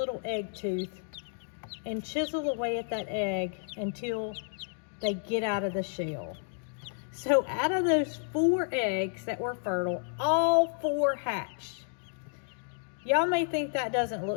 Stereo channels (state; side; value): silent; right; 57 dB below the other